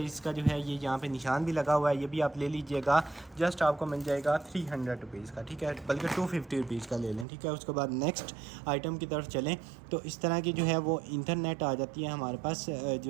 जो है ये यहाँ पे निशान भी लगा हुआ है, ये भी आप ले लीजिएगा। जस्ट आपको मिल जाएगा 300 रुपीज़ का। ठीक है, बल्कि 250 रुपीज़ का ले लें। ठीक है, उसके बाद नेक्स्ट आइटम की तरफ चलें तो इस तरह की जो है वो इंटरनेट आ जाती है हमारे पास,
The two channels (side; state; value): left; drops out; at 7.2 s